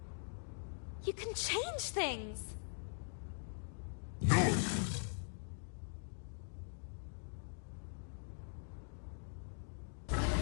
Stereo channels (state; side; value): silent; right; digital silence